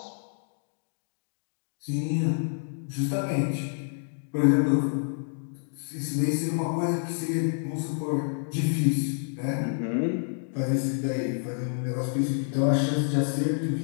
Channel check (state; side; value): silent; right; digital silence